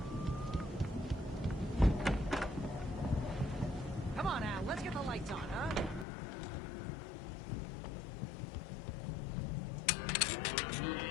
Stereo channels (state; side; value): drops out; right; at 6.1 s